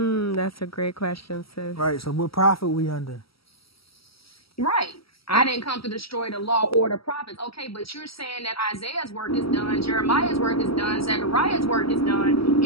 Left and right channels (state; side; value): late; right; 0.75 ms